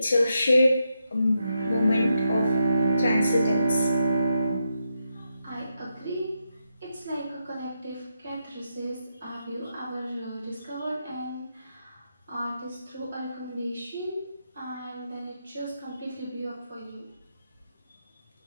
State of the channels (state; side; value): inverted; both; correlation -0.84